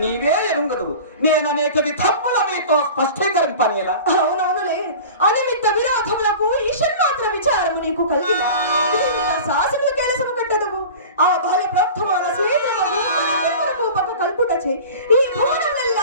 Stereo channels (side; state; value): both; inverted; correlation -0.37